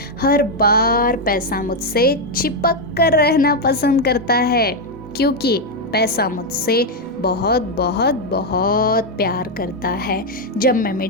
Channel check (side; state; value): both; normal; correlation 0.02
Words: हर बार पैसा मुझसे चिपक कर रहना पसंद करता है, क्योंकि पैसा मुझसे बहुत बहुत बहुत प्यार करता है। जब मैं